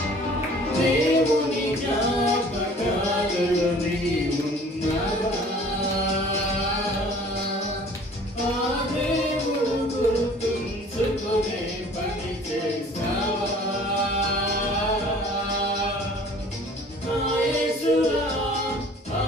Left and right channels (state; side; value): normal; both; correlation 0.50